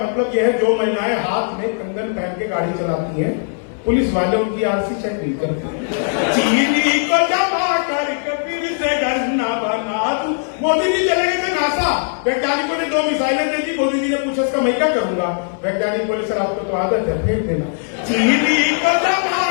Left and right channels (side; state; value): right; silent; 63 dB below the other